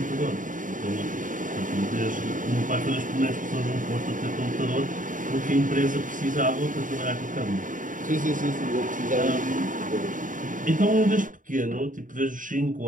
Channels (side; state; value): left; late; 0.38 ms